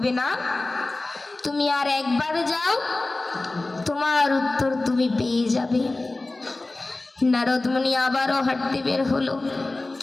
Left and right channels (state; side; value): quieter; right; 3.0 dB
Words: না, তুমি আর একবার যাও, তোমার উত্তর তুমি পেয়ে যাবে। নারদ মুনি আবারও হাঁটতে বের হলো।